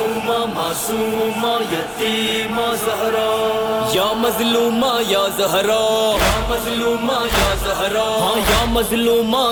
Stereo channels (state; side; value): identical; both; correlation 1.00